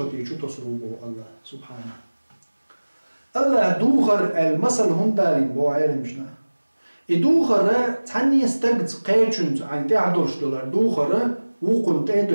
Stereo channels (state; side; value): inverted; both; correlation -1.00